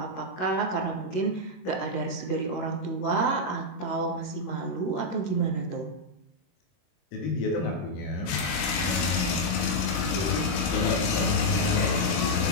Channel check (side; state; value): right; late; 22 ms